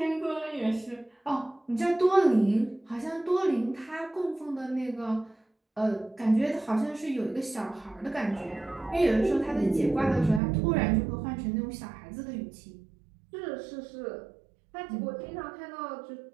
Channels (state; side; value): drops out; left; at 10.4 s